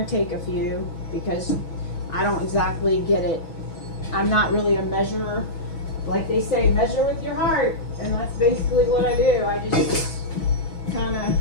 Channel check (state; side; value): late; right; 6.2 ms